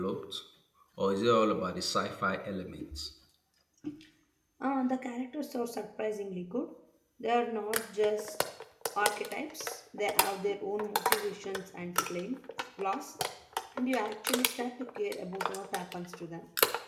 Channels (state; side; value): identical; both; correlation 1.00